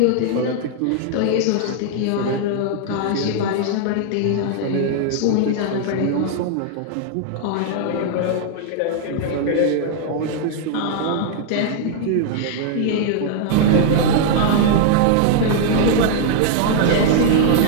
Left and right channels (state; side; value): different; both; correlation -0.01